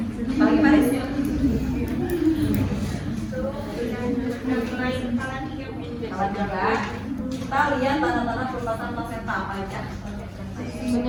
Pagi Paris. Alat juga. Kita lihat tanda-tanda perubahan plasenta apa aja.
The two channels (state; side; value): identical; both; correlation 1.00